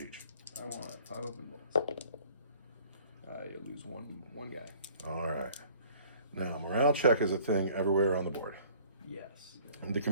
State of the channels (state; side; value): inverted; both; correlation -0.54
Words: each. I want 5 open bolts. You lose one guy. All right. Now, morale check is a thing everywhere on the board. Yes. And the